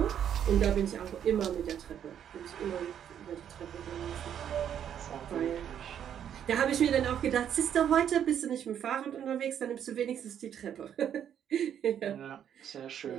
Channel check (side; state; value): left; quieter; 9.3 dB